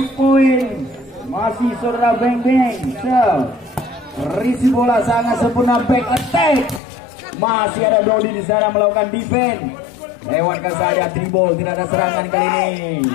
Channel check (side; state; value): right; drops out; at 6.8 s